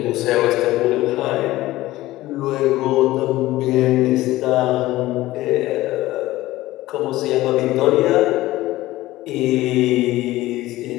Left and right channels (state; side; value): quieter; right; 17.1 dB